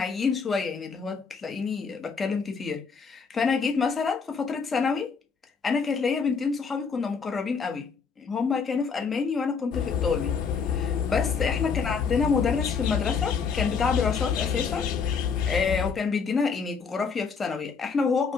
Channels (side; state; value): right; quieter; 5.6 dB